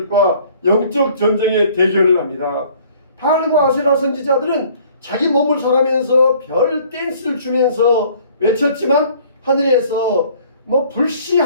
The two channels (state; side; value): inverted; both; correlation -0.55